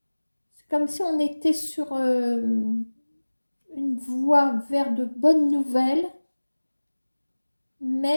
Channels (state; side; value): inverted; both; correlation -1.00